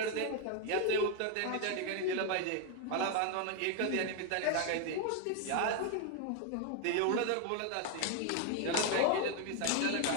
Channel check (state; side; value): different; both; correlation 0.00